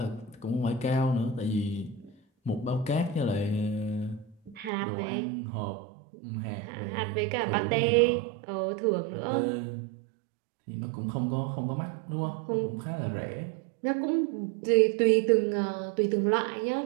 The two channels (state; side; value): drops out; left; at 4.7 s